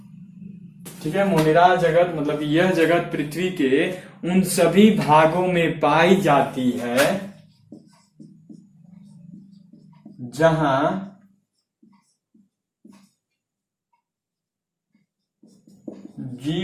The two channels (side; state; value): both; identical; correlation 1.00